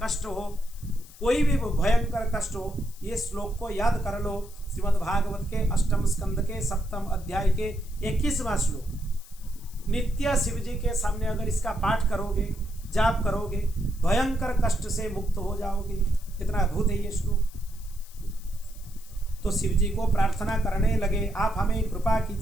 कष्ट हो, कोई भी भयंकर कष्ट हो, ये श्लोक को याद कर लो। श्रीमद् भागवत के 8वें स्कंद के 7वें अध्याय के 21वां श्लोक। नित्य शिव जी के सामने अगर इसका पाठ करोगे, जाप करोगे, भयंकर कष्ट से मुक्त हो जाओगे। कितना अद्भुत है ये श्लोक। तो शिव जी को प्रार्थना करने लगे, आप हमें कृपा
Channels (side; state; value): left; noise; hiss, 21 dB below the sound